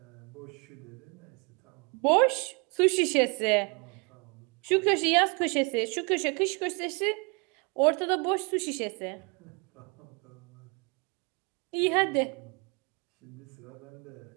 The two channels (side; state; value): left; quieter; 33.1 dB